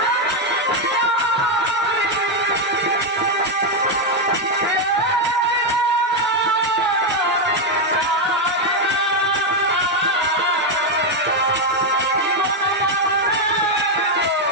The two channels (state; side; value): normal; both; correlation 0.03